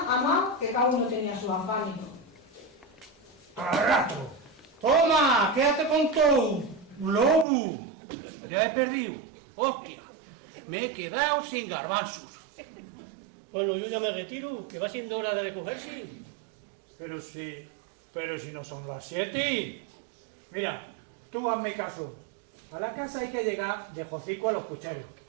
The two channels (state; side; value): drops out; left; at 7.5 s